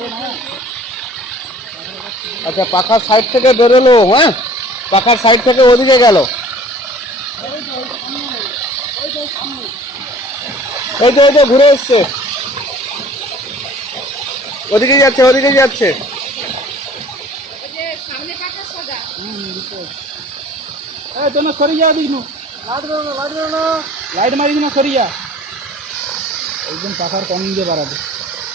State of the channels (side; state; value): both; normal; correlation 0.50